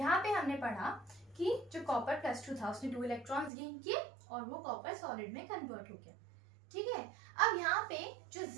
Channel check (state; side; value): drops out; left; at 3.5 s